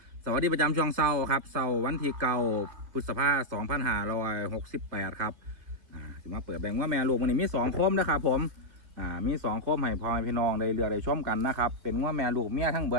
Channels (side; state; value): left; late; 2.6 ms